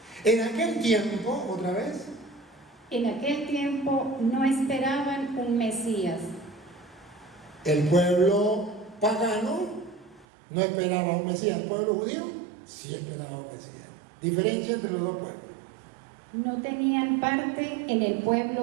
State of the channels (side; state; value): left; drops out; at 10.2 s